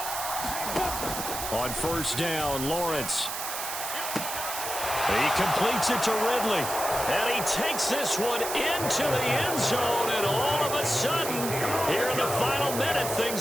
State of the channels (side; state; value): right; noise; hiss, 5 dB below the sound